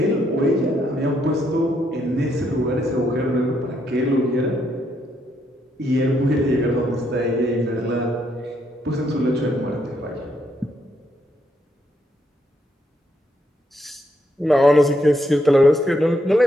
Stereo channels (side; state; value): both; normal; correlation 0.75